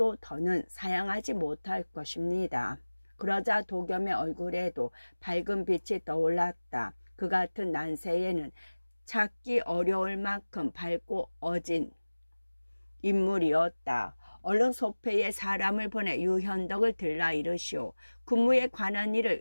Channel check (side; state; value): both; inverted; correlation -1.00